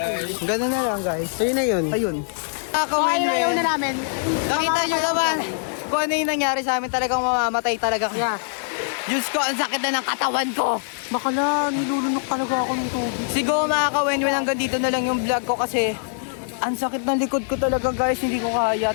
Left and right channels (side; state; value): right; silent; digital silence